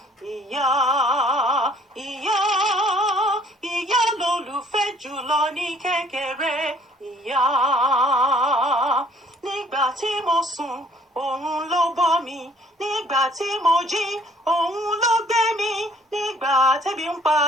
ìyá, ìyá, ìyá lolùfẹ́ jùlọ ní kékeré. Ìyá, nígbà tí mo sùn, òun ló bọ́ mi. Nígbà tí mo jí, òun ló gbé mi. Nígbà tẹ́bí ń pa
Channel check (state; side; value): normal; both; correlation 0.59